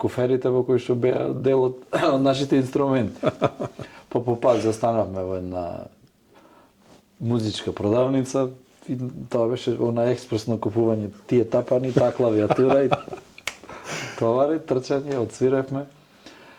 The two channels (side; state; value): both; identical; correlation 1.00